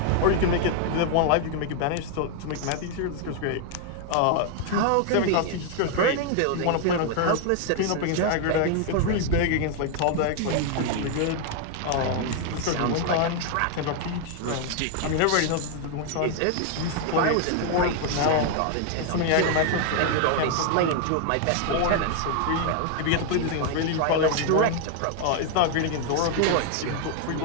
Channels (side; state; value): both; different; correlation 0.00